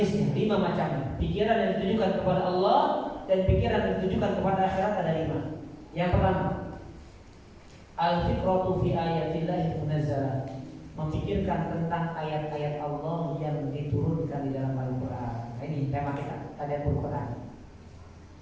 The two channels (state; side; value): identical; both; correlation 1.00